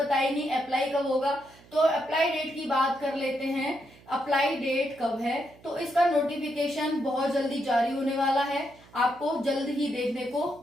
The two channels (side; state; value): right; noise; hum, 25 dB below the sound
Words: नहीं, अप्लाई कब होगा। तो अप्लाई डेट की बात कर लेते हैं अप्लाई डेट कब है, तो इसका नोटिफिकेशन बहुत जल्दी जारी होने वाला है, आपको जल्द ही देखने को